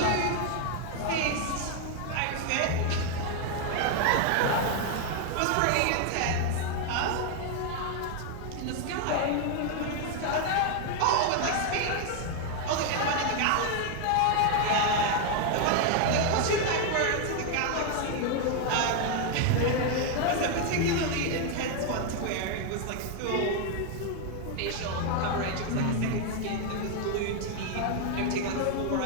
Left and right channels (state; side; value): different; both; correlation 0.01